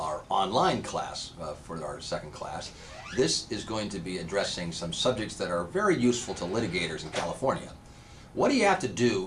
class for our second class. This is going to be addressing some subjects that are very useful to litigators in California. What do you have to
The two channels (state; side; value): identical; both; correlation 1.00